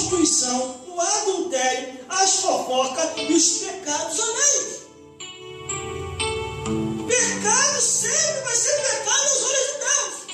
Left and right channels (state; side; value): identical; both; correlation 1.00